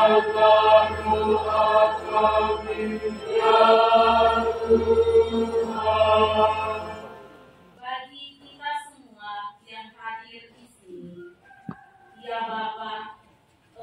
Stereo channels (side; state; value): both; identical; correlation 1.00